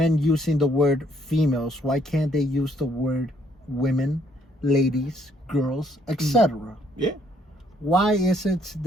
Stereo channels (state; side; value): normal; both; correlation 0.67